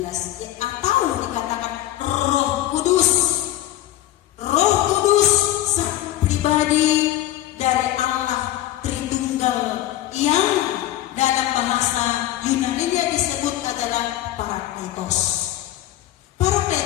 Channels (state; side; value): quieter; right; 14.2 dB